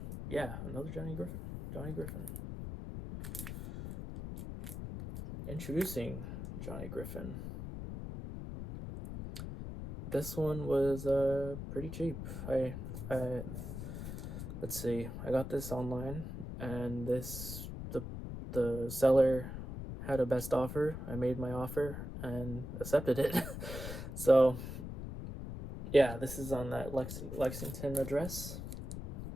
yeah, another Johnny Griffin. Introducing Johnny Griffin. this one was pretty cheap. I let's see. I got this online, and the seller had a best offer. I made my offer and accepted it. So yeah, this is on that Lexington address,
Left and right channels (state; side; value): noise; left; rumble, 7 dB below the sound